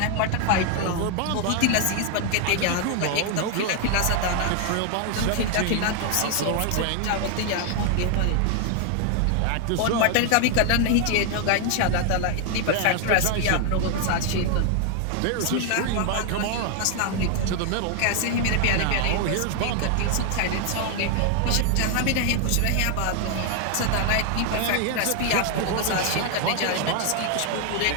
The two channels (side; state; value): both; different; correlation 0.00